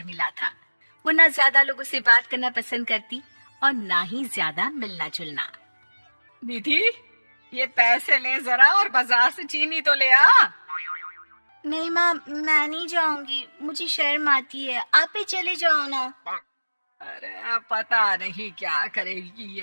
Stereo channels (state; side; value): inverted; both; correlation -1.00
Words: था। वो ना ज्यादा लोगों से बात करना पसंद करती और ना ही ज्यादा मिलना जुलना। निधि, ये पैसे ले जरा और बाजार से चीनी तो ले आ। नहीं माँ, मैं नहीं जाऊंगी, मुझे शर्म आती है, आप ही चले जाओ ना। अरे पता नहीं क्या करेगी